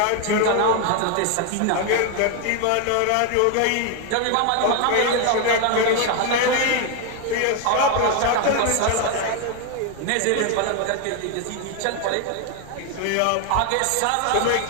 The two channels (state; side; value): different; both; correlation 0.01